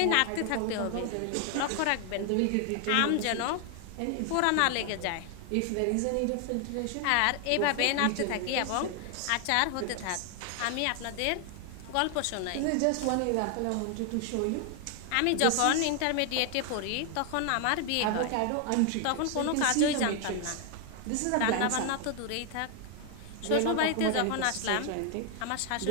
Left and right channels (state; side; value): different; both; correlation 0.00